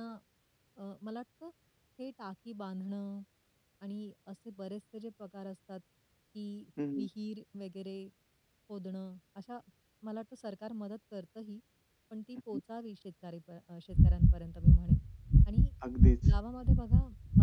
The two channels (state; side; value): identical; both; correlation 1.00